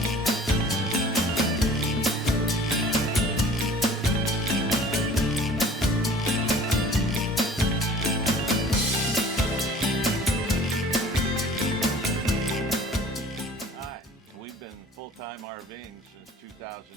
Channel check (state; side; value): normal; both; correlation 0.49